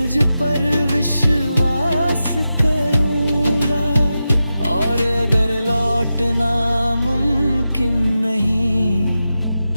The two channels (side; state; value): both; inverted; correlation -0.91